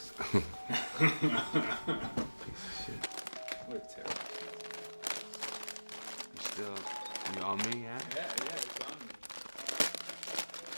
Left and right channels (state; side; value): inverted; both; correlation -1.00